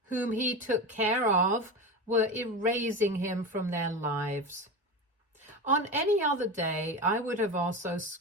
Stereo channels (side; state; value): both; normal; correlation 0.23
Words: whom he took care of, were erasing him from their lives. On any other day, I would have also